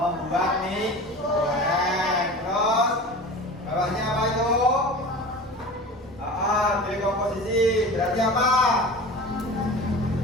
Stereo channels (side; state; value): both; normal; correlation 0.35